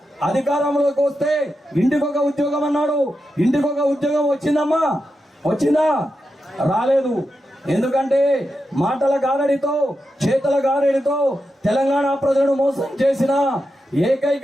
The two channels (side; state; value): both; normal; correlation 0.88